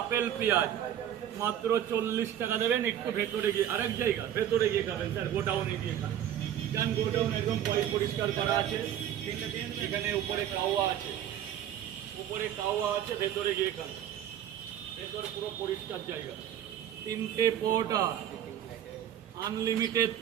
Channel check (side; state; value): left; quieter; 10.6 dB